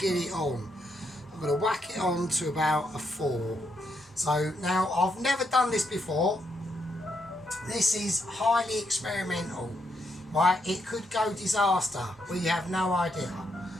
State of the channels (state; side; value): normal; both; correlation 0.78